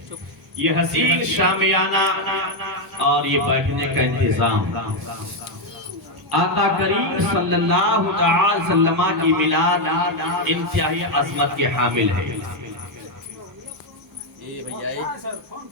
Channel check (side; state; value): both; normal; correlation 0.03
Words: یہ حسین شامیانہ اور یہ بیٹھنے کا انتظام آقا کریم صلی اللہ علیہ وسلم کی میلاد انتہائی عظمت کے حامل ہے۔ یہ